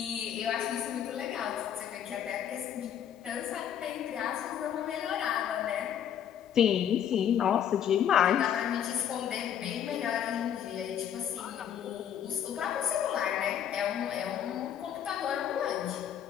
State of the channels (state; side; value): quieter; right; 9.4 dB